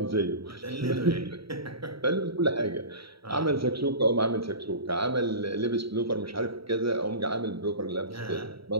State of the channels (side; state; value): left; late; 0.75 ms